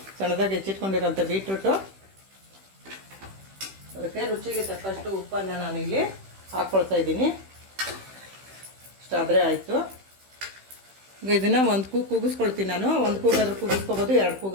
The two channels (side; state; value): left; late; 15 ms